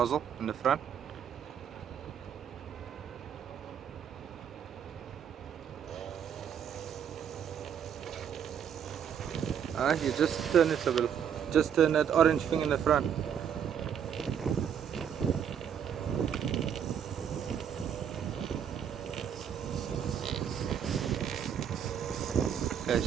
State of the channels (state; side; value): quieter; left; 8.4 dB